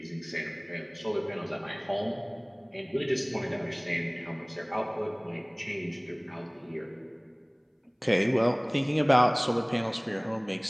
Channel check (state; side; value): identical; both; correlation 1.00